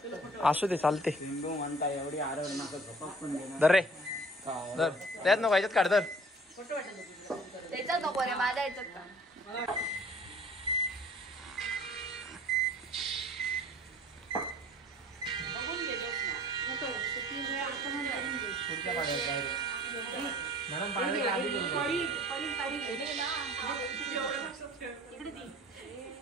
असू दे चालते। म्हणता एवढी आरड नका झोपक पण देणार। धर रे धर, त्यात नको ह्याच्यात काढ, धर त्याच्यात नको रे, माझ्या ह्याच्यात का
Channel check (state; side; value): normal; both; correlation 0.50